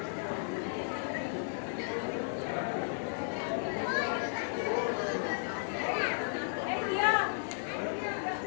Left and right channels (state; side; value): silent; right; 55 dB below the other